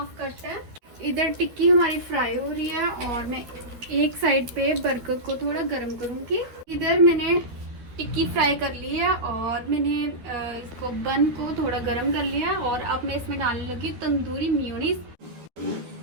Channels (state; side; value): late; left; 12 ms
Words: कट है। इधर टिक्की हमारी फ्राई हो रही है और मैं एक साइड पे बर्गर को थोड़ा गर्म करूंगी। इधर मैंने टिक्की फ्राई कर ली है और मैंने इसको बन को थोड़ा गर्म कर लिया है, और अब मैं इसमें डालने लगी तंदूरी मेयोनीज।